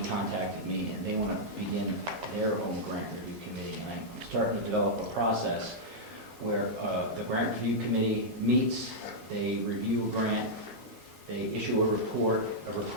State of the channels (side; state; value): both; normal; correlation -0.07